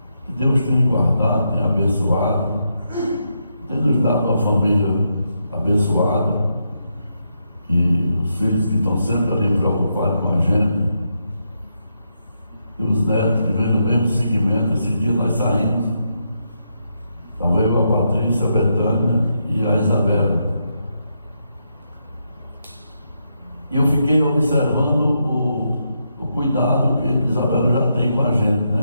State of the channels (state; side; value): inverted; both; correlation -0.82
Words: Que Deus tem guardado, tem abençoado, tem nos dado uma família abençoada, e os filhos que estão sempre ali preocupados com a gente, e os netos que vêm no mesmo segmento. Esse dia nós saímos, estava eu, a Patrícia, a Betânia e a Isabela, e eu fiquei observando o cuidado que a Isabela já tem com a gente,